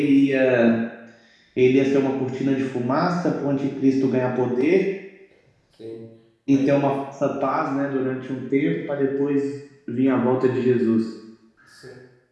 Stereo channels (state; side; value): identical; both; correlation 1.00